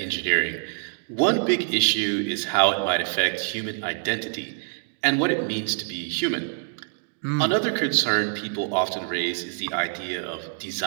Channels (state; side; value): silent; left; digital silence